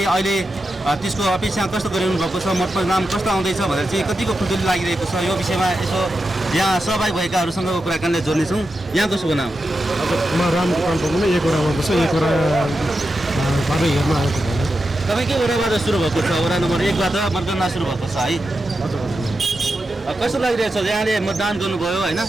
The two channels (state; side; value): normal; both; correlation 0.89